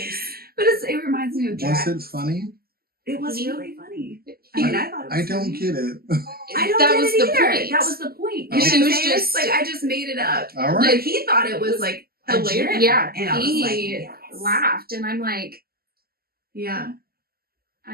But it reminds me of Was Jack. it funny? It was really funny. He- I thought it was I don't funny. get it. I don't that get was it the either. point. That was the point. Oh. You know She what was I'm saying? just- like, I just made it up. All right. Like, he thought it was like a hilarious. gem. Yeah. And I was like, He yes. laughed. And I'm like, Yeah.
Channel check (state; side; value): late; left; 0.45 ms